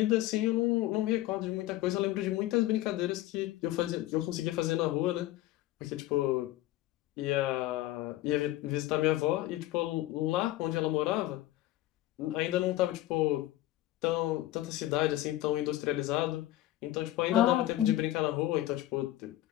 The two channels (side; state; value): right; quieter; 15.5 dB